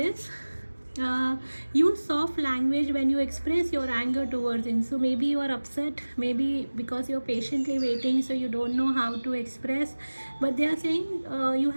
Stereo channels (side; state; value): both; inverted; correlation -1.00